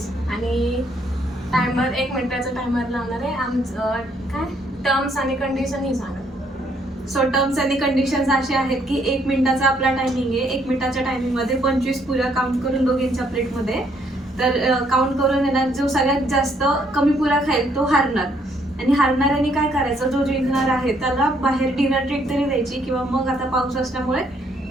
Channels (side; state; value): both; normal; correlation 0.69